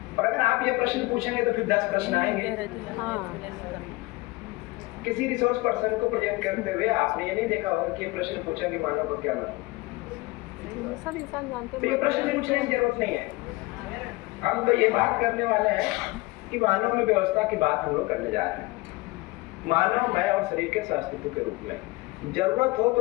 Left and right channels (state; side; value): quieter; right; 22.5 dB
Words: और अगर आप ये प्रश्न पूछेंगे तो फिर 10 प्रश्न आएंगे। किसी रिसोर्स पर्सन को प्रेजेंट करते हुए आपने ये नहीं देखा होगा कि ये प्रश्न पूछा कि मानव का क्या मतलब। सब इंसान जानते हैं, तो ये प्रश्न पूछने की जरूरत नहीं है। हम तो ये बात करने वाले हैं कि मानव में व्यवस्था की बात हम लोग करने जा रहे हैं। मानव मैं और शरीर के अस्तित्व के रूप में जरूरत हो तो